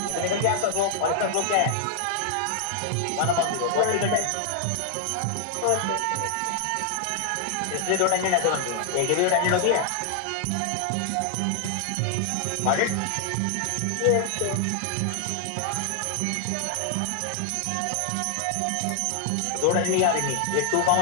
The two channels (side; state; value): both; different; correlation 0.00